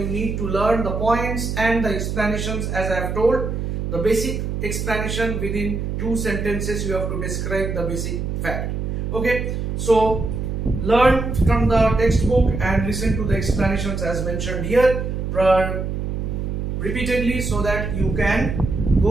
need to learn, the points and the explanations. As I have told, the basic explanation within 2 sentences you have to describe the basic fact. Okay, so learn from the textbook and listen to the explanations as mentioned here repeatedly, so that you can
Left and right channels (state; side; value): noise; right; hum, 3 dB below the sound